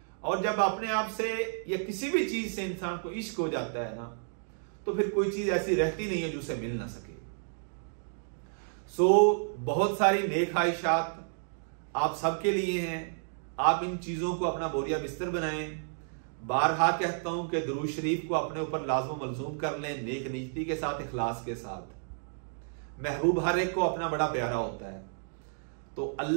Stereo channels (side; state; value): left; silent; digital silence